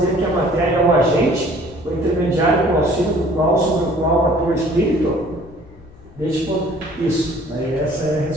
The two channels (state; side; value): noise; left; rumble, 23 dB below the sound